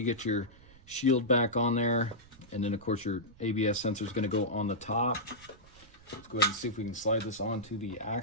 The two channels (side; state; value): right; noise; rumble, 23 dB below the sound